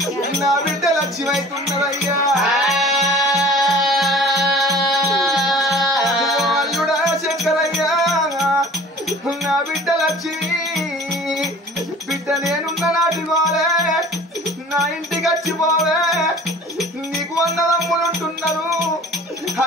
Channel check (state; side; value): normal; both; correlation 0.45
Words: లక్ష్మి అవుతున్నదయ్యా అల్లుడా శంకరయ్య నా బిడ్డ లక్ష్మి బిడ్డ నేనున్న నాటి పోలే నా ఇంటికి వచ్చిపోవే నీకు 100 తమ్ములు ఉంటున్నారు